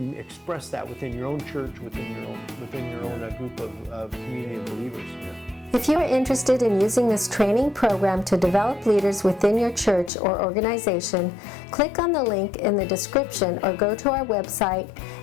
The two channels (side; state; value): right; drops out; at 10.1 s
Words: express that within your own church, within your own group of community of believers. If you are interested in using this training program to develop leaders within your church or organization, click on the link in the description or go to our website,